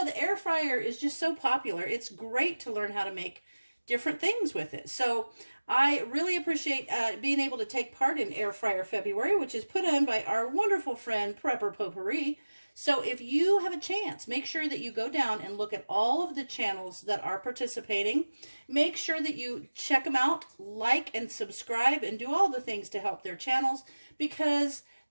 the air fryer is just so popular. It's great to learn how to make different things with it. So I really appreciate being able to take part in Air Fryer February, which is put on by our wonderful friend Prepper Potpourri. So if you have a chance, make sure that you go down and look at all of the channels that are participating. Make sure that you check them out, like and subscribe, and do all the things to help their channels, because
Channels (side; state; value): both; inverted; correlation -1.00